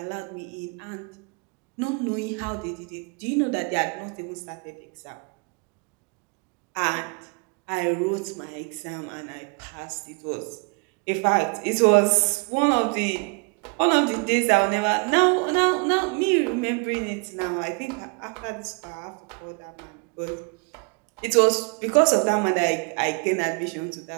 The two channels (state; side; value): quieter; left; 33.3 dB